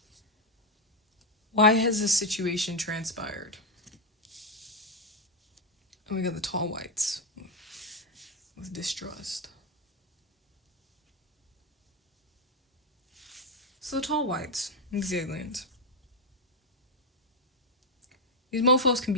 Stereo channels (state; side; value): normal; both; correlation 0.03